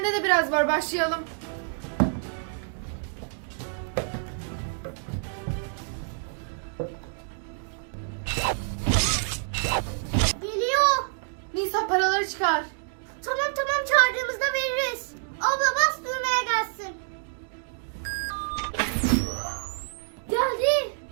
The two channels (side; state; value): left; silent; digital silence